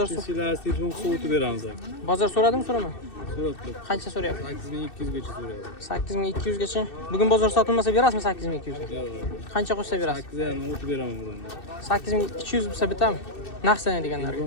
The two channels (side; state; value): right; late; 2.6 ms